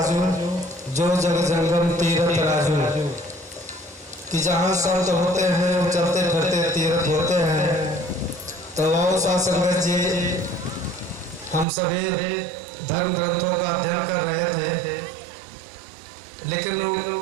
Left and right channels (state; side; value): drops out; left; at 11.7 s